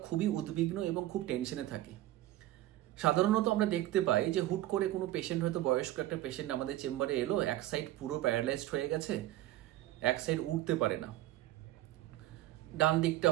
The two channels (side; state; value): left; quieter; 14.9 dB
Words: খুবই উদ্বিগ্ন এবং খুব টেনশনে থাকি। সাধারণত আমরা দেখতে পাই যে হুট করে কোনো পেশেন্ট, হয়তো বয়স্ক একটা পেশেন্ট আমাদের চেম্বারে এলো, এক সাইড পুরো প্যারালাইজড হয়ে গেছে, এক সাইড উঠতে পারে না, ডান দিকটা